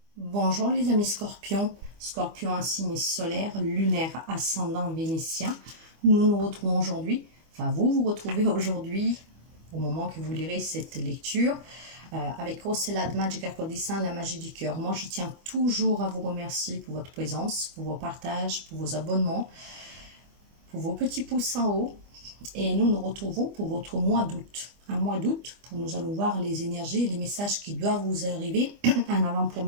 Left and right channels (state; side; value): late; left; 25 ms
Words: Bonjour les amis scorpions, scorpion un signe solaire, lunaire, ascendant vénitien. Nous nous retrouvons aujourd'hui, enfin vous vous retrouvez aujourd'hui, au moment que vous lirez cette lecture, avec Rossella de Magica Codissin, la magie du cœur. Moi je tiens toujours à vous remercier pour votre présence, pour vos partages, pour vos abonnements, pour vos petits pouces en haut. Et nous nous retrouvons pour votre mois d'août. Un mois d'août, pour nous allons voir les énergies et les messages qui doivent vous arriver en